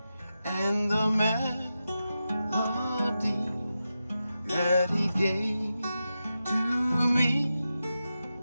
and the melody that he gave to me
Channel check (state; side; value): inverted; both; correlation -0.90